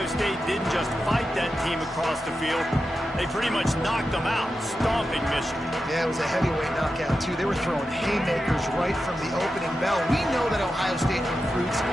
State didn't just fight that team across the field. They pretty much knocked them out, stomping Michigan. Yeah, it was a heavyweight knockout, too. They were throwing haymakers right from the opening bell. We know that Ohio State recruits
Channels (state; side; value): normal; both; correlation 0.90